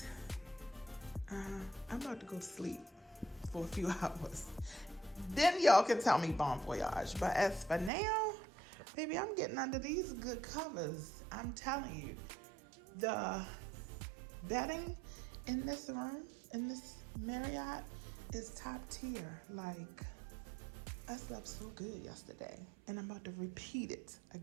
I'm about to go to sleep for a few hours. Then y'all can tell me bon voyage. But as for now, baby, I'm getting under these good covers. I'm telling you, the bedding in this room, in this Marriott, is top tier. Like, I slept so good yesterday, and I'm about to repeat it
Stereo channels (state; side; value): drops out; left; at 7.9 s